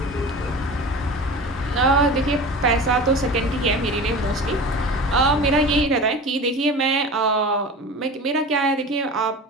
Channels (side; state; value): both; normal; correlation 0.34